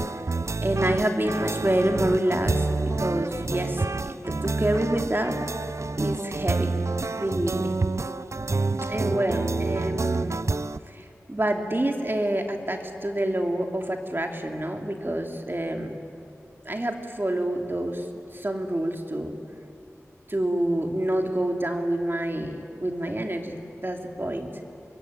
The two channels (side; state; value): both; normal; correlation 0.92